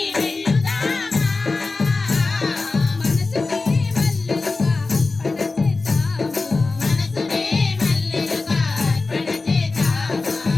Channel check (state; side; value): quieter; right; 3.7 dB